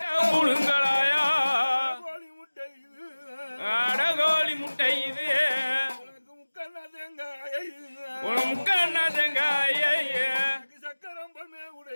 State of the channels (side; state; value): both; inverted; correlation -1.00